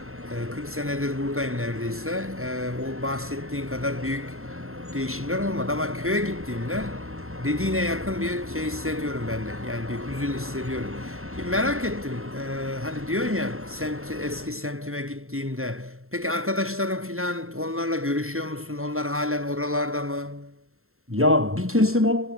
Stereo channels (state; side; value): late; left; 0.62 ms